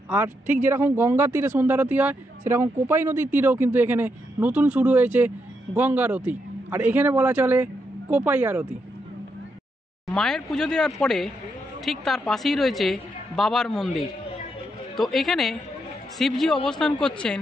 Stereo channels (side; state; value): both; normal; correlation 0.80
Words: আর ঠিক যেরকম গঙ্গার তীরে সন্ধ্যারতি হয়, সেরকম কোপাই নদীর তীরেও কিন্তু এখানে নতুন শুরু হয়েছে গঙ্গারতি, আর এখানে বলা চলে কোপাই আরতি। মায়ের পুজো দেওয়ার পরে ঠিক তার পাশেই রয়েছে বাবার মন্দির। তো এখানে শিবজি অবস্থান করছেন